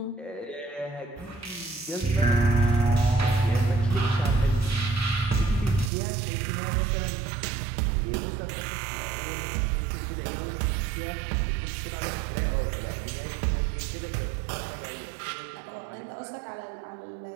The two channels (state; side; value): drops out; left; at 5.9 s